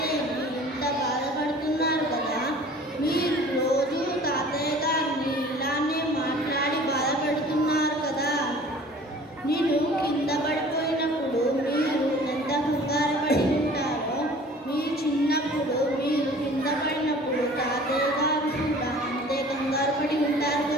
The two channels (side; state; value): both; normal; correlation 0.47